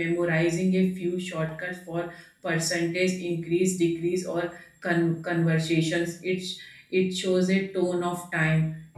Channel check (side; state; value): both; identical; correlation 1.00